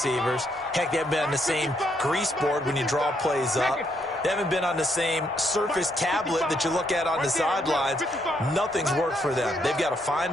Heck, they haven't been on the same grease board when you draw plays up. They haven't been on the same Surface tablet that you look at on the sidelines. Nothing's worked for them. They've got to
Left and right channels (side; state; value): both; normal; correlation 0.74